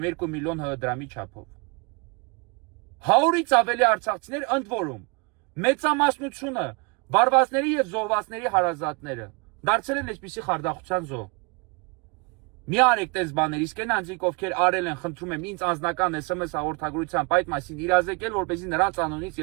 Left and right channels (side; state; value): left; quieter; 30.9 dB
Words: 2 միլիոն դրամի չափով։ 100-ից ավելի արցախցիներ ընդ որում մեծամասնությունը վարվածների եւ զոհվածների հարազատները դարձել են այսպիսի խարդախության զոհ։ Մի արեք տես բաներ, իսկ այն անձիկ ովքեր արել են, խնդրում եմ ինձ անձնական SMS հաղորդագրությամբ այդ մասին իրազեկել, որպեսզի նրանց անունից